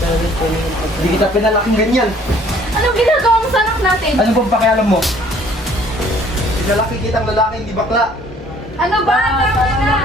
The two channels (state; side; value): normal; both; correlation 0.58